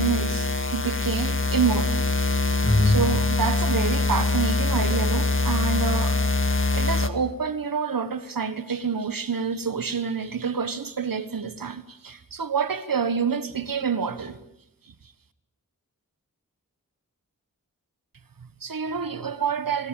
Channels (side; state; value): both; normal; correlation 0.33